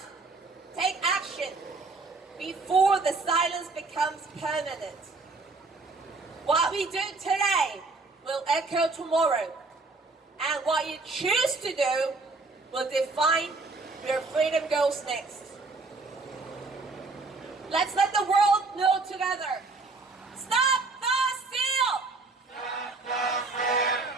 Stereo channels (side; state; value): left; quieter; 3.7 dB